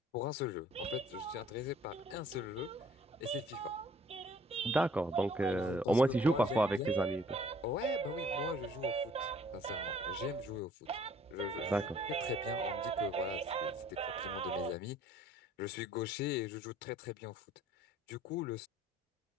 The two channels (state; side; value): normal; both; correlation 0.57